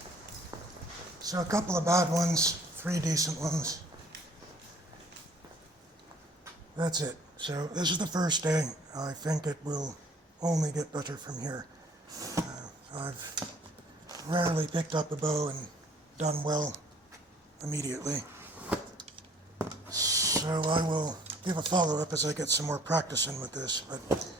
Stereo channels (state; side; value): normal; both; correlation 0.56